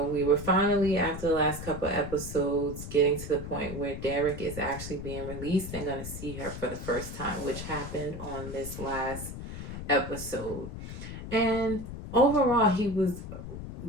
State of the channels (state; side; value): noise; left; rumble, 9 dB below the sound